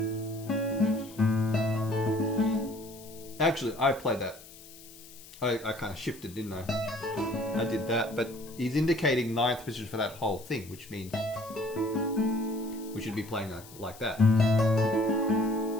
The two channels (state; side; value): noise; left; hiss, 19 dB below the sound